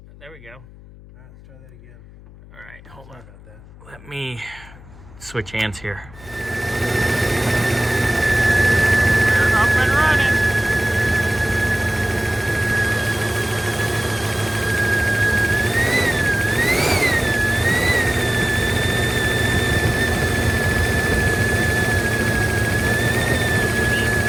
There we go. All right, let's try that again. All right, hold on. Sorry about that. Let me switch hands here. We're up and running.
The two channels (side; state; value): left; noise; hum, 21 dB below the sound